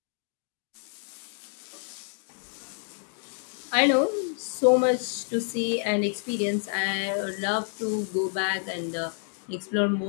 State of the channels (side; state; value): right; silent; 59 dB below the other